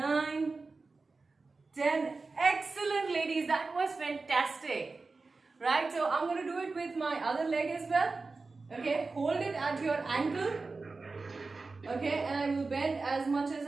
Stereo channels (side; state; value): left; quieter; 3.9 dB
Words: 10. Excellent, ladies. That was fantastic. Right? So I'm going to do it with my other leg as well. Okay? Hold it at your ankle. Okay? And I will bend as much as